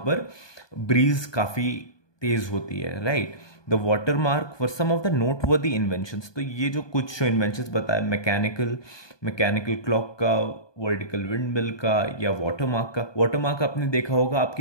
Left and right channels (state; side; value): late; right; 1.2 ms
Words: ब्रीज काफी तेज होती है. Right. The watermark for some of the noteworthy inventions. तो ये जो कुछ जो इन्वेंशंस बताए, मैकेनिकल क्लॉक का, वर्टिकल विंड मिल का, या वाटर मार्क का. वाटर मार्क आपने देखा होगा,